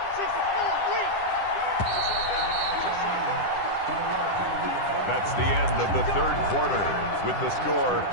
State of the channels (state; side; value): late; right; 10 ms